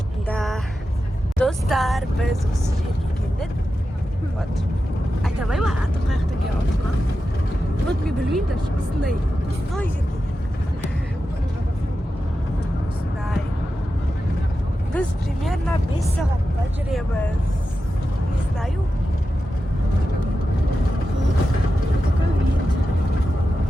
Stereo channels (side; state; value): both; normal; correlation 0.91